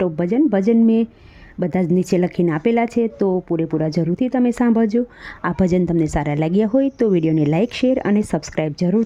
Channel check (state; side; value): identical; both; correlation 1.00